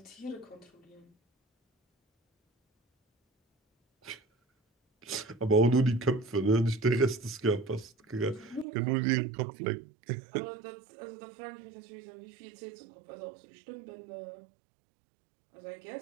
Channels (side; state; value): left; drops out; at 8.7 s